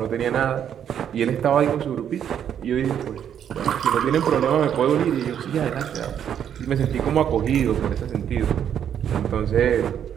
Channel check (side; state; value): left; quieter; 9.1 dB